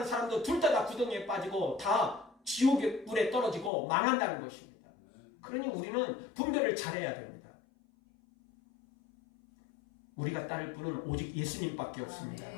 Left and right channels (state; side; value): drops out; right; at 3.7 s